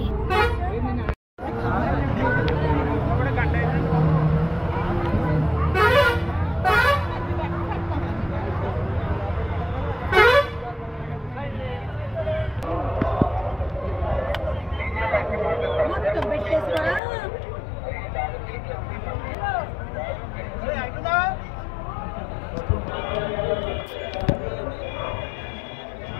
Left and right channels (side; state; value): right; drops out; at 17.0 s